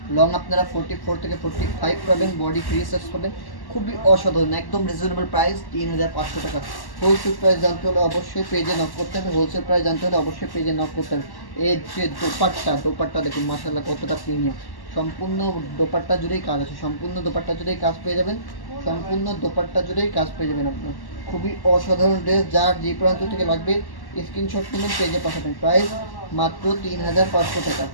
লং আপনারা 44 থেকে 45 পাবেন, বডি ফ্রি সাইজ পাবেন। খুবই অসাধারণ, একদম রিজনেবল প্রাইস 3500 টাকা। হোলসেল প্রাইস জানতে হলে অবশ্যই পেজে নক করতে হবে, হোলসেল প্রাইস জানতে হলে অবশ্যই পেজে নক করতে হবে। এর যে দোপাট্টা দেখুন মাশাআল্লাহ কতটা প্রিমিয়াম। সম্পূর্ণ দোপাট্টা জুড়েই কাজ আছে, সম্পূর্ণ দোপাট্টা জুড়েই কাজ পেয়ে যাবেন, সম্পূর্ণ দোপাট্টা জুড়েই কাজ পেয়ে যাবেন আপনার। খুবই অসাধারণ ড্রেস, যার যে প্রান্ত থেকে লাগবে স্ক্রিনশট নিয়ে পেজে পাঠাবেন। প্রাইস মাত্র 3500 টাকা।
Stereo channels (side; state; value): right; late; 1.1 ms